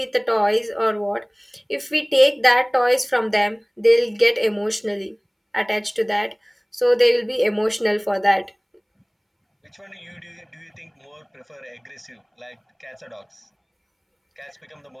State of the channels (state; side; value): identical; both; correlation 1.00